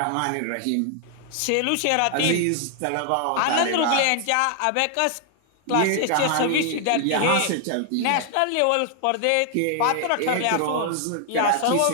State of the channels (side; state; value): both; different; correlation 0.00